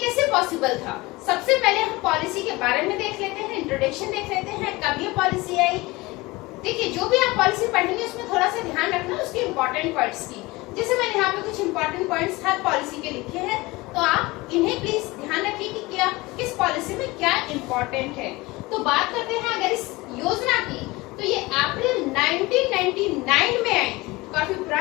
पॉसिबल था। सबसे पहले हम पॉलिसी के बारे में देख लेते हैं, इंट्रोडक्शन देख लेते हैं, कब ये पॉलिसी आई। देखिए, जो भी आप पॉलिसी पढ़ेंगे उसमें थोड़ा सा ध्यान रखना उसके इम्पोर्टेंट पॉइंट्स की। जैसे मैंने यहाँ पे कुछ इम्पोर्टेंट पॉइंट्स हर पॉलिसी के लिखे हैं, तो आप इन्हें प्लीज ध्यान रखिए कि क्या किस पॉलिसी में क्या इम्पोर्टेंट है। तो बात करते हैं अगर इस योजना की, तो ये अप्रैल 1999 में आई थी, काफी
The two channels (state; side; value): quieter; right; 21.8 dB